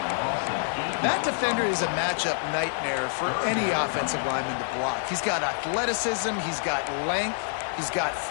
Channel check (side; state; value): right; silent; digital silence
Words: That defender is a matchup nightmare for any offensive lineman to block. He's got athleticism, he's got length, he's got